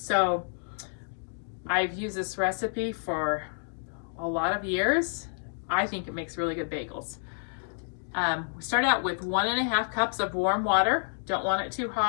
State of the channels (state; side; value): silent; right; digital silence